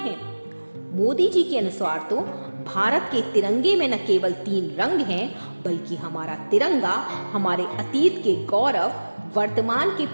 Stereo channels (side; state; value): both; inverted; correlation -1.00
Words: मोदी जी के अनुसार तो भारत के तिरंगे में न केवल 3 रंग हैं, बल्कि हमारा तिरंगा हमारे अतीत के गौरव, वर्तमान के